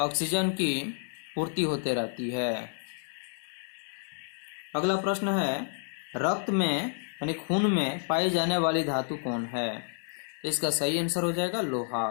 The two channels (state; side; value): silent; right; digital silence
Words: की पूर्ति होते रहती है। अगला प्रश्न है, रक्त में यानी खून में पाई जाने वाली धातु कौन है? तो इसका सही आंसर हो जाएगा लोहा।